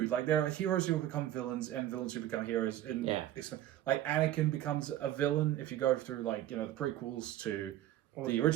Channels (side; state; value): left; quieter; 13.2 dB